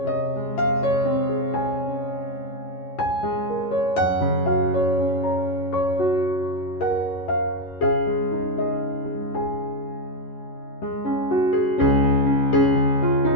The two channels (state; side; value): late; right; 11 ms